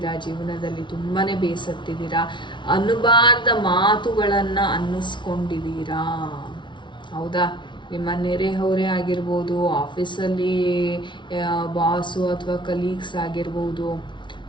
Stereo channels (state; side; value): late; right; 0.23 ms